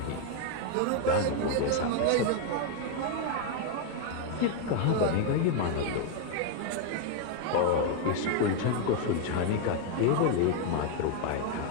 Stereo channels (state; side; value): different; both; correlation 0.01